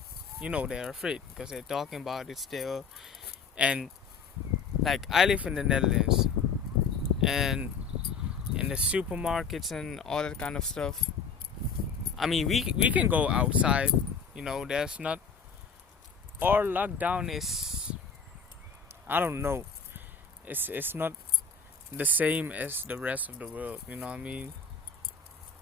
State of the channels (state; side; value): quieter; right; 5.6 dB